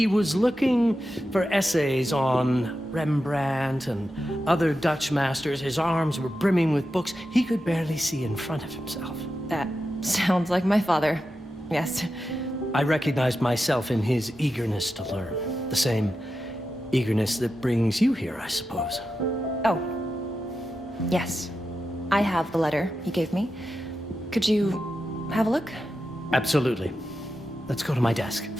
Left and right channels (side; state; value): both; normal; correlation 0.90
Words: was looking for essays on Rembrandt and other Dutch masters. His arms were brimming with books. He could barely see in front of himself. That sounds like my father. Yes. I recognized myself in his eagerness to learn. The same eagerness that brings you here, I suppose. Oh. Yes. I have the letter he gave me. Could you have a look? Absolutely. Let's go to my desk.